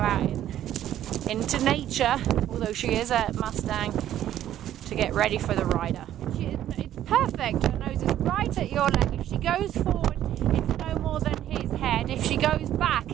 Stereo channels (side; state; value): left; quieter; 11.9 dB